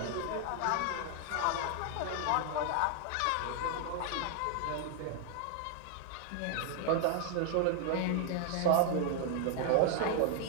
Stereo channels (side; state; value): both; different; correlation 0.00